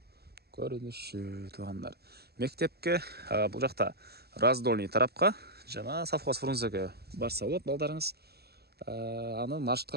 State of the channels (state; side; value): late; left; 0.47 ms